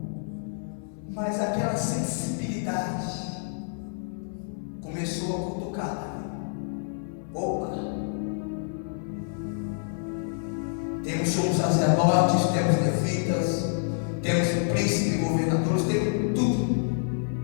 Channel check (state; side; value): silent; right; digital silence